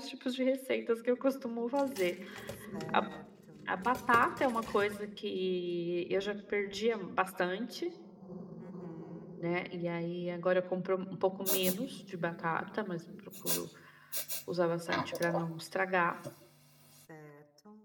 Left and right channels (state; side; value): identical; both; correlation 1.00